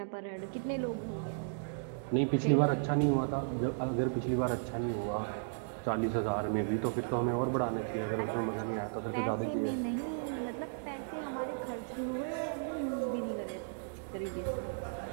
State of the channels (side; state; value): left; silent; digital silence